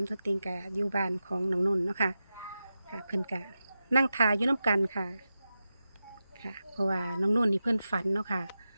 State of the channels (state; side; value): inverted; both; correlation -0.92